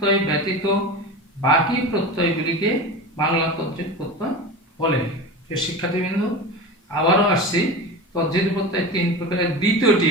ব্যতীত বাকি প্রত্যয়গুলিকে বাংলা তদ্ধিত প্রত্যয় বলে। শিক্ষার্থীবৃন্দ আবারও আসছি তদ্ধিত প্রত্যয় 3 প্রকারের দ্বিতীয়টি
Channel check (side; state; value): both; normal; correlation 0.29